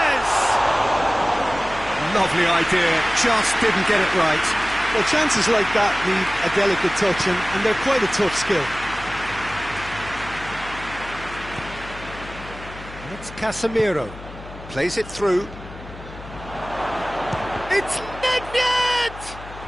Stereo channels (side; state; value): left; noise; hum, 15 dB below the sound